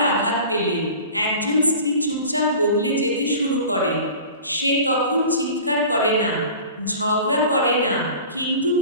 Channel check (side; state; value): both; inverted; correlation -0.40